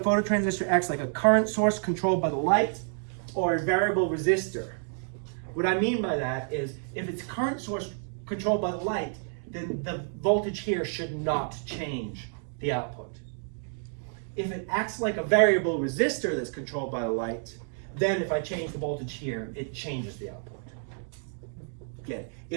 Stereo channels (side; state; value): left; silent; 58 dB below the other